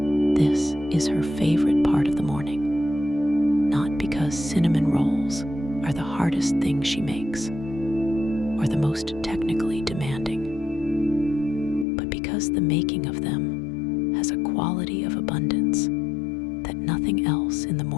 This is her favorite part of the morning, not because cinnamon rolls are the hardest thing she makes or the most technically demanding, but because the making of them has a quality of abundance that nothing else in the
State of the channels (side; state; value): right; drops out; at 11.9 s